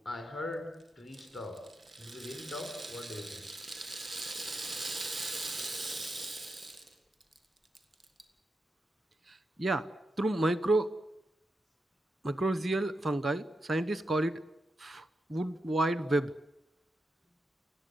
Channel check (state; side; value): normal; both; correlation 0.87